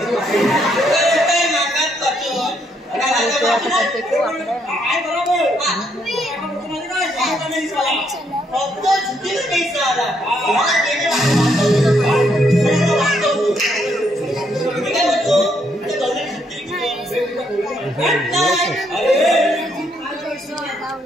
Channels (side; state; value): both; normal; correlation 0.73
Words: काय मागात पाठवून काय बरोबर फक्त झुकीला पैसा आला.